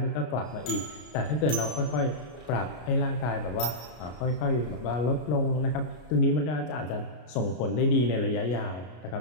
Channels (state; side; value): late; right; 33 ms